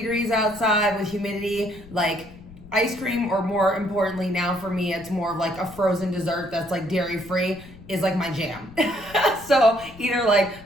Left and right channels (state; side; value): noise; left; rumble, 19 dB below the sound